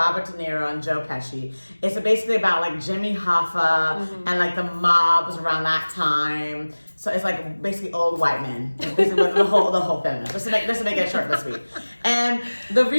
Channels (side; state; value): both; inverted; correlation -1.00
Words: De Niro, and Joe Pesci. It's basically about like Jimmy Hoffa and like the mobs around that time. So it's like basically old white men. It's basically the whole film. Just to make it short but sweet. And the